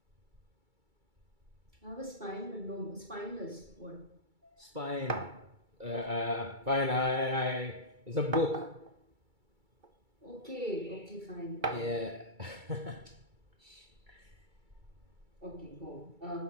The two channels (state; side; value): late; left; 2.3 ms